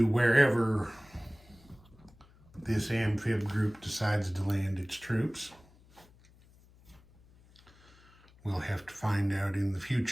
wherever this amphib group decides to land its troops. We'll have to find out in the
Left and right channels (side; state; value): left; noise; hum, 27 dB below the sound